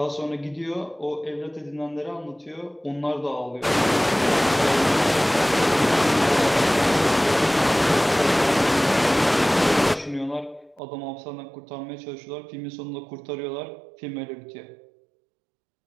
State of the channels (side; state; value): left; drops out; at 10.8 s